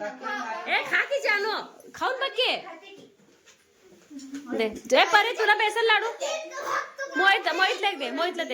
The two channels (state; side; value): identical; both; correlation 1.00